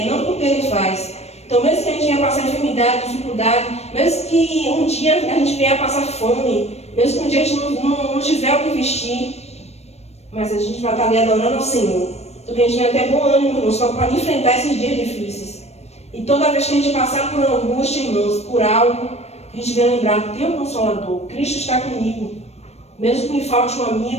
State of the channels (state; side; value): late; right; 0.31 ms